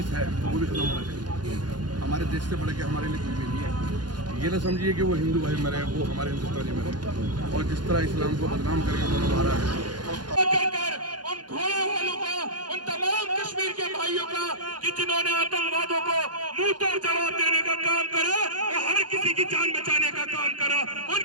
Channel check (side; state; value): left; late; 0.70 ms